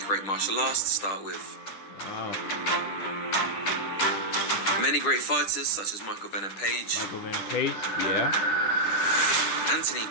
great martial arts to start with. Wow. Many great fighters such as Michael Venom Page, Yeah. Anthony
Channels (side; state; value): right; late; 10 ms